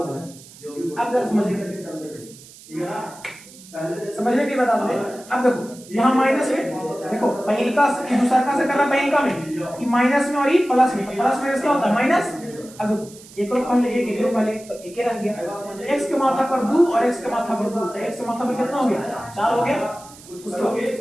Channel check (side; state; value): right; noise; hiss, 20 dB below the sound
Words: अब जरा समझने की बता दो। अब देखो यहाँ माइनस में, देखो पहिलका से दूसरा का से करना, पहिलका में कि माइनस में और ये प्लस में, तो प्लस माइनस क्या होता है माइनस। अब देखो एक रो पहले एक रो पहले तो एक ही रह गया, x के माथा पर 2 और x के माथा पर 2, तो x के माथा पर कितना हो गया 4 हो गया। उसके बाद